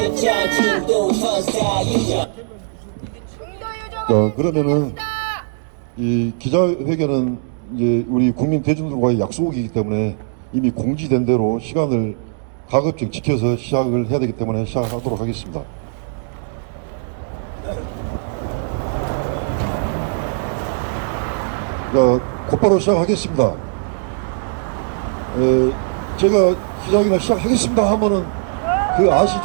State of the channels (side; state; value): left; silent; 63 dB below the other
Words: 중도 선사유죠. 그러면은 이 기자회견은 이제 우리 국민 대중들과의 약속이기 때문에 이미 공지된 대로 시간을 가급적 지켜서 시작을 해야 되기 때문에 시작하도록 하겠습니다. 곧바로 시작하겠습니다. 제가 기자회견을 시작하겠습니다 하면은